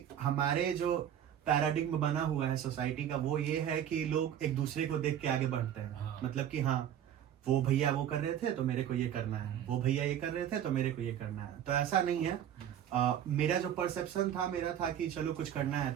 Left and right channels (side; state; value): left; quieter; 10.1 dB